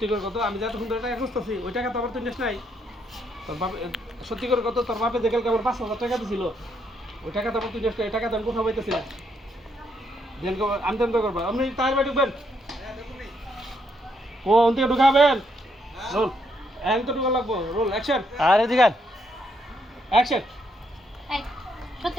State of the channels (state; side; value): normal; both; correlation 0.75